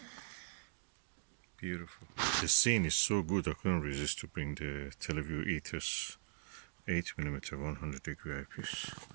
Beautiful. The scene is so good I couldn't resist to bring the Televue Ethos 8mm 100-degree eyepiece.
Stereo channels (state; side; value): silent; left; digital silence